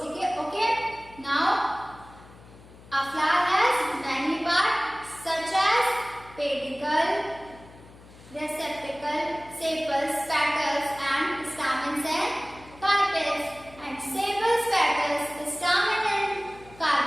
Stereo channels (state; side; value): noise; left; hum, 22 dB below the sound